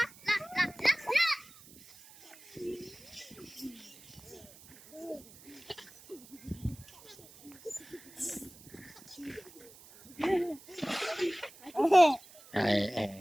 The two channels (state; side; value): noise; right; hiss, 21 dB below the sound